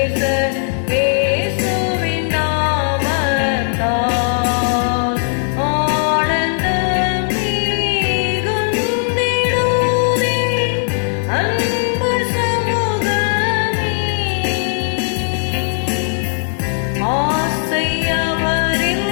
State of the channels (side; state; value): right; silent; digital silence